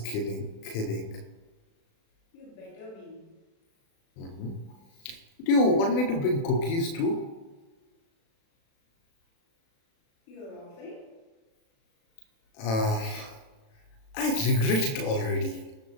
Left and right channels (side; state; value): right; late; 36 ms